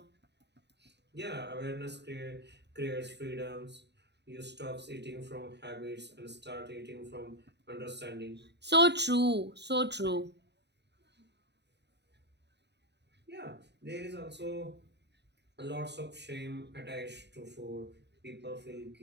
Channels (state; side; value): late; left; 0.50 ms